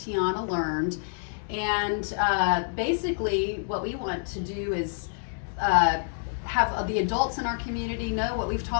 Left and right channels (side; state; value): right; silent; digital silence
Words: learned. And basically what we want to do is have the adults in our community know what we've